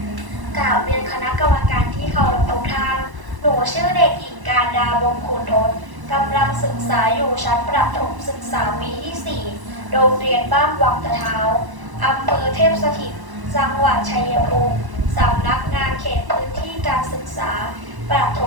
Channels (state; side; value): late; left; 1.0 ms